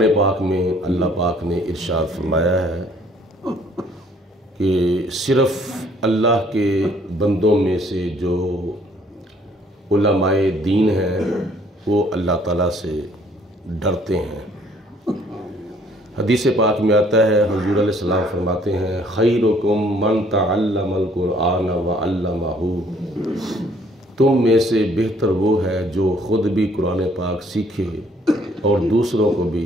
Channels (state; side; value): normal; both; correlation 0.61